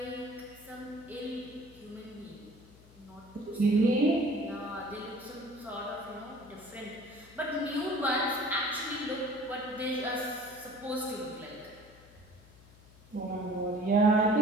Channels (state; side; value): noise; left; hum, 23 dB below the sound